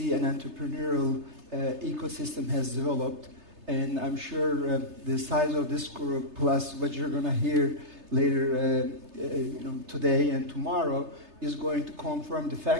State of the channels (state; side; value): late; left; 3.3 ms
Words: and entrepreneurial ecosystem has developed. And I'm sure the size of this group, plus what you're going to hear later today and tomorrow, is going to confirm the